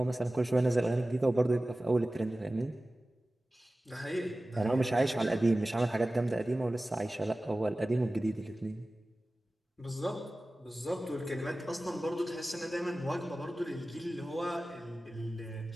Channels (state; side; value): normal; both; correlation 0.96